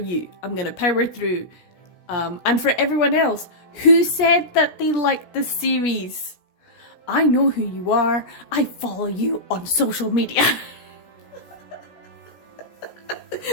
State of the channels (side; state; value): right; late; 16 ms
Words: I'm gonna power through. And for everyone else who said that they liked the series, I know who you are. I follow you on social media.